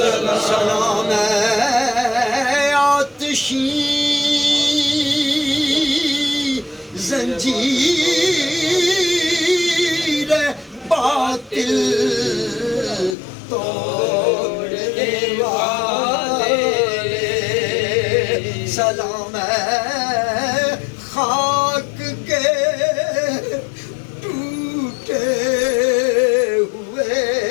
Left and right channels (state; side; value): drops out; right; at 13.2 s